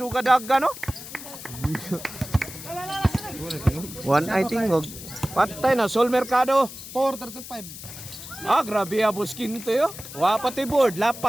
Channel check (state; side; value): noise; left; hiss, 13 dB below the sound